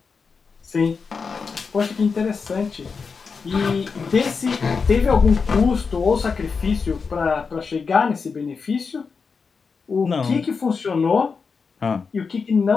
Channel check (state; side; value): quieter; right; 5.2 dB